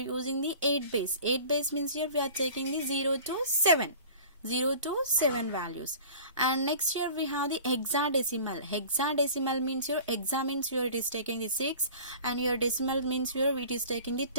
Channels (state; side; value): inverted; both; correlation -0.42